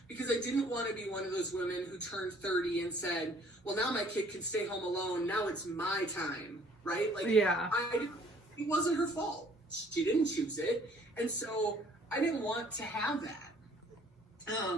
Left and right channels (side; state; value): both; normal; correlation 0.58